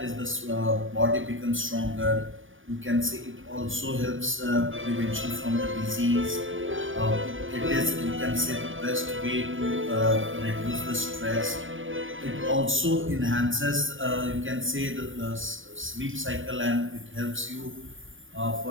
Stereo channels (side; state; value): left; late; 0.57 ms